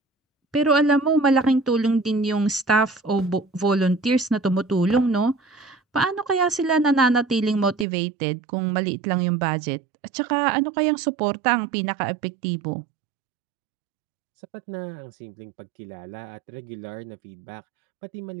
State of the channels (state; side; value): drops out; left; at 7.9 s